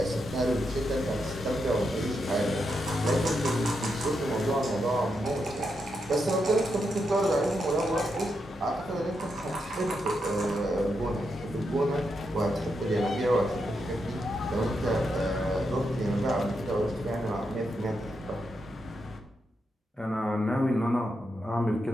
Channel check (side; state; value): both; normal; correlation 0.84